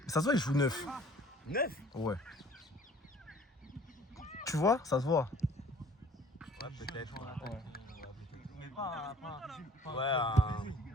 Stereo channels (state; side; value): normal; both; correlation 0.53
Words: Ça se voit, il joue 9. 9. Ouais. Tu vois? Ça se voit. Ouais, peut-être.